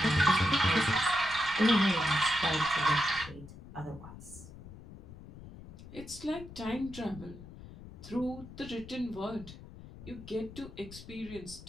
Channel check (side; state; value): left; noise; rumble, 16 dB below the sound